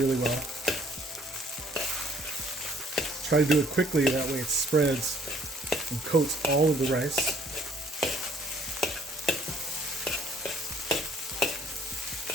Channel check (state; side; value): normal; both; correlation 0.60